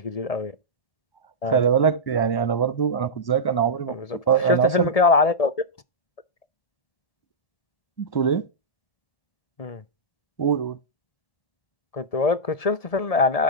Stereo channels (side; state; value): right; late; 1.7 ms